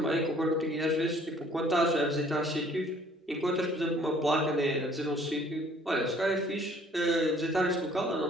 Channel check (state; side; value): normal; both; correlation 0.57